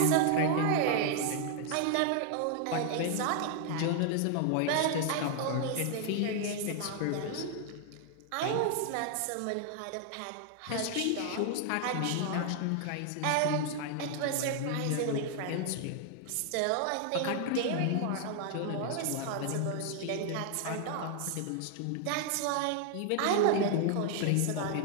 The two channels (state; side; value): different; both; correlation 0.00